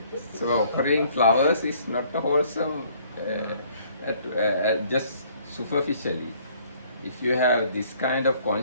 So offering flowers is not a wholesome, just superficially. If you have this kind of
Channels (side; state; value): both; inverted; correlation -0.60